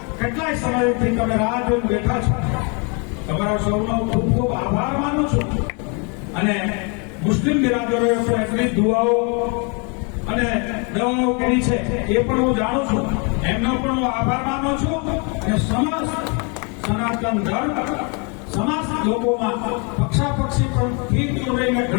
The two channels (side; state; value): right; quieter; 34.1 dB